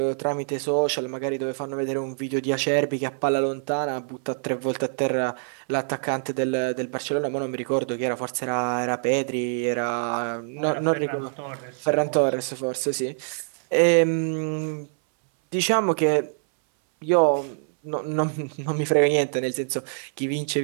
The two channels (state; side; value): silent; left; 61 dB below the other